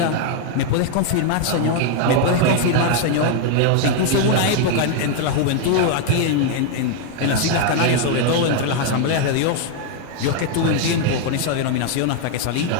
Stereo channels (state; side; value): different; both; correlation 0.00